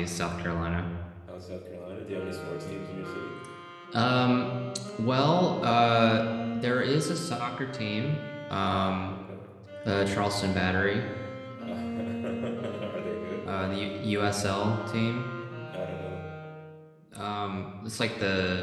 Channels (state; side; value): identical; both; correlation 1.00